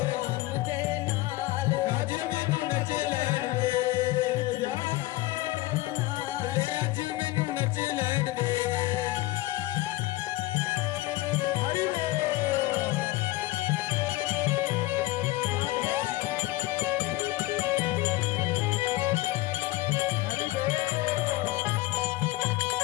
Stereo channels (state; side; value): quieter; right; 18.4 dB